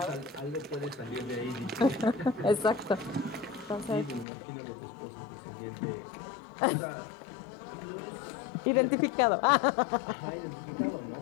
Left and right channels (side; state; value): right; drops out; at 4.2 s